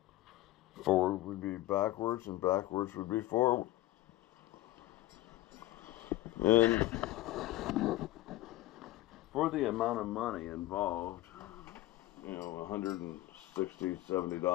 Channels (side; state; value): right; quieter; 16.4 dB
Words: Forward would be backwards, and backwards would be forward. And for the amount of money involved, you know, $160,